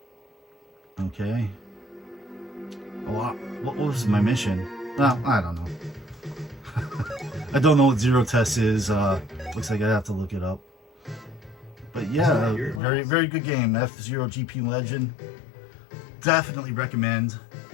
Okay. Oh, what was my mission? Well, I don't know. I don't know what zero test is. Looks like I have to look it up. But yeah, very good game. F-Zero GP Legend. Definitely recommend.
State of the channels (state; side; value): drops out; right; at 12.8 s